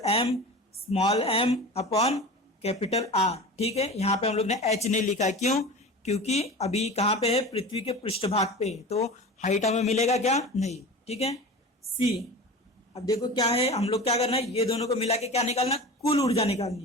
M small m upon capital R। ठीक है, यहाँ पे हम लोग ने H नहीं लिखा है, क्यों, क्योंकि अभी कहाँ पे है, पृथ्वी के पृष्ठभाग पे है, तो हाइट हमें मिलेगा क्या, नहीं। ठीक है। सी, अब देखो क्या है, हम लोग क्या करना है, ये दोनों को मिला के क्या निकालना, कुल ऊर्जा निकालनी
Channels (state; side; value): normal; both; correlation 0.33